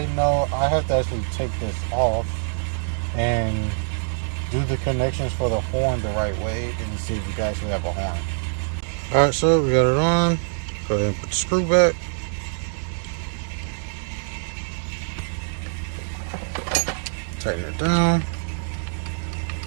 know I have to actually take this off and do the connections for the horn the right way and see if you can actually have a horn. Alright, so we got it on. Go ahead and put the screw back. Tighten it down.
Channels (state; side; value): silent; left; digital silence